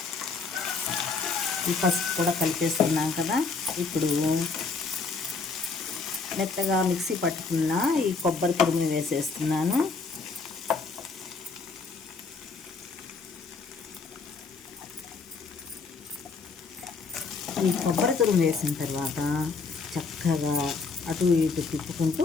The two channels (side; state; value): right; quieter; 4.5 dB